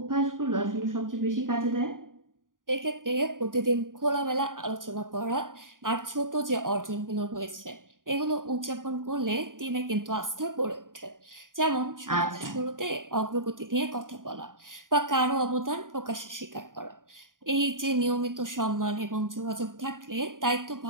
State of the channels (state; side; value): late; left; 0.89 ms